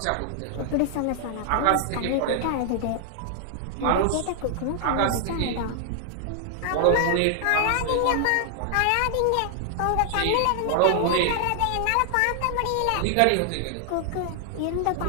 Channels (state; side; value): different; both; correlation 0.00